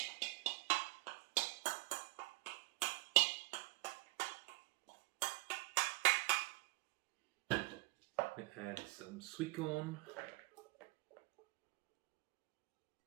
Add some sweetcorn,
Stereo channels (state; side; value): quieter; left; 22.6 dB